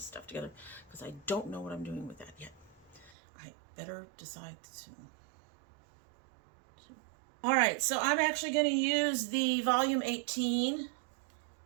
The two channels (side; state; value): left; drops out; at 3.1 s